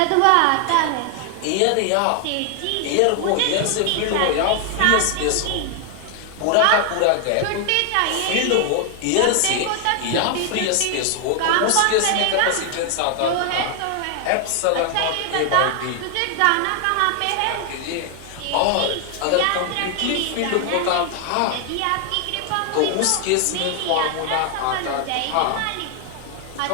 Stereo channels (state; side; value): different; both; correlation 0.00